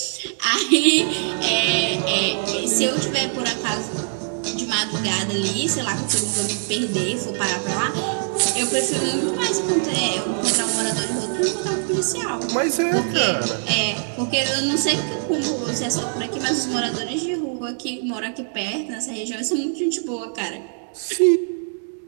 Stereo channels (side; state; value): left; silent; digital silence